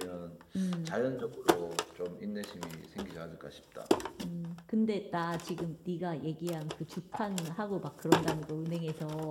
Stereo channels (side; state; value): both; identical; correlation 1.00